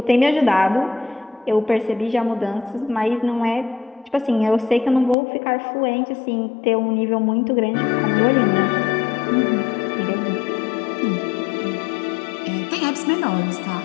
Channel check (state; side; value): drops out; right; at 5.2 s